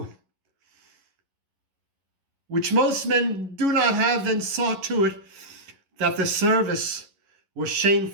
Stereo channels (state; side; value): late; left; 11 ms